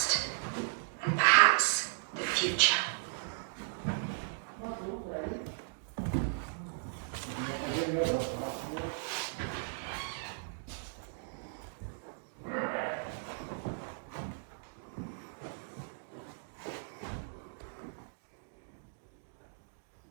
and perhaps the future.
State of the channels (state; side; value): silent; left; digital silence